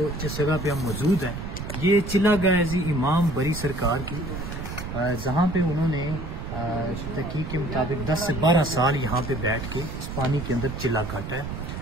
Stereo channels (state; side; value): noise; right; rumble, 7 dB below the sound